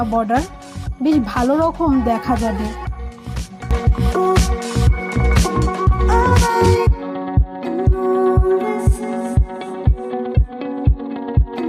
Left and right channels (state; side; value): identical; both; correlation 1.00